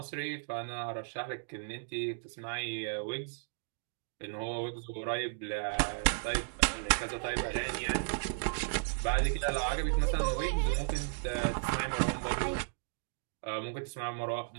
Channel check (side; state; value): left; silent; digital silence